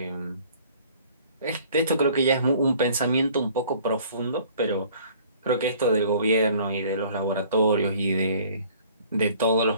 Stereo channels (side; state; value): both; inverted; correlation -0.53